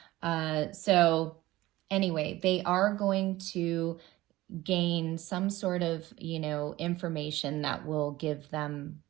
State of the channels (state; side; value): quieter; left; 17.6 dB